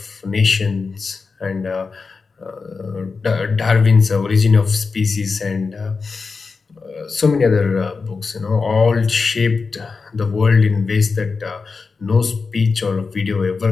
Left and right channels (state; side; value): quieter; right; 4.6 dB